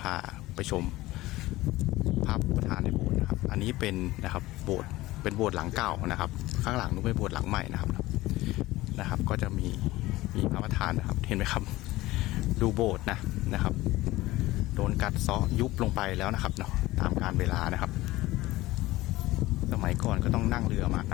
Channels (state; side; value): quieter; right; 18.0 dB